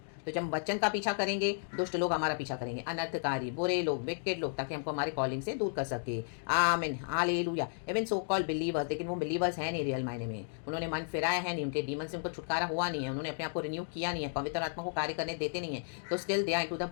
तो जब हम वचन का पीछा करेंगे, दुष्ट लोग हमारा पीछा करेंगे, अनर्थकारी, बुरे लोग, विकेट लोग, ताकि हमको हमारे कॉलिंग से दूर कर सके। आमीन, hallelujah. Even so called believers, लेकिन वो बिलीवर्स हैं नहीं रियल मायने में। उन्होंने मन फिराया है नहीं, उनके डीमन से उनको छुटकारा हुआ नहीं है, उन्होंने अपने आप को रिन्यू किया नहीं है, पवित्र आत्मा को कार्य करने देते नहीं है। तो still they are into the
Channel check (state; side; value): silent; right; digital silence